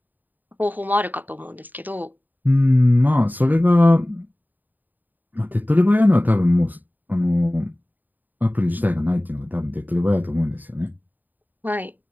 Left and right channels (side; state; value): left; late; 0.086 ms